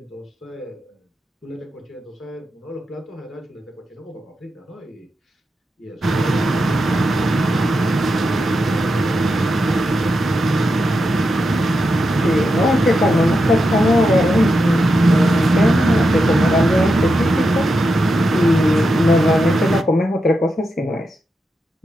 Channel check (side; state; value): both; normal; correlation 0.87